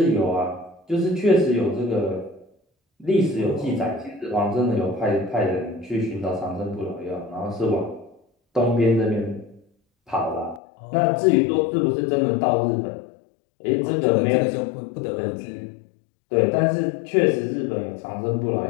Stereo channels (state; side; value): drops out; right; at 10.6 s